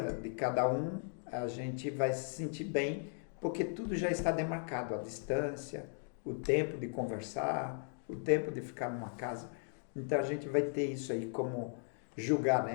de cada um, a gente vai se sentir bem, porque tudo já está demarcado, a distância, o tempo de conversar, o tempo de ficar numa casa. Então a gente vai ter isso aí como julgar,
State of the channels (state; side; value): silent; right; 53 dB below the other